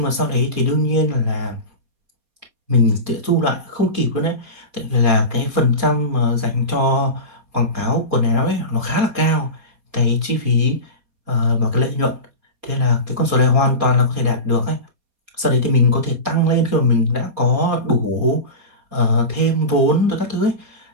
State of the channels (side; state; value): left; late; 4.2 ms